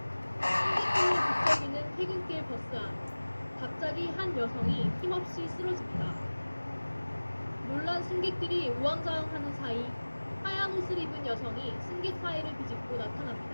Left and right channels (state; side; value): inverted; both; correlation -1.00